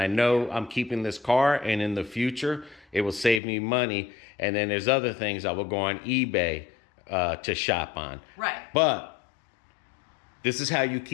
know I'm keeping this car, and in the future it will save me money. And then there's other things I will go on eBay to shop on. Right. But this is how you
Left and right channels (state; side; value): drops out; right; at 3.4 s